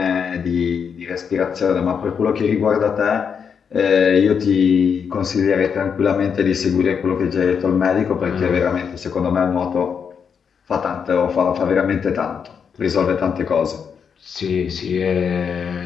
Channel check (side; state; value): right; quieter; 6.8 dB